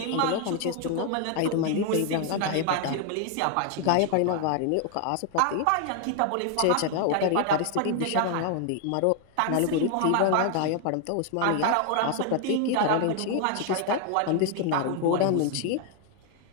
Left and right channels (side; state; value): both; different; correlation 0.00